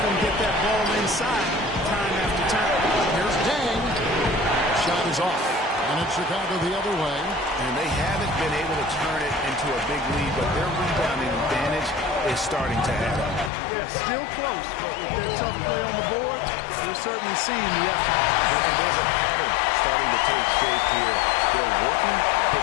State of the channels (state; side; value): drops out; right; at 13.5 s